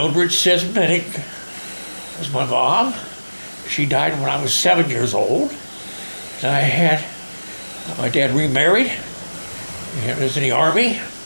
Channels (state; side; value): inverted; both; correlation -1.00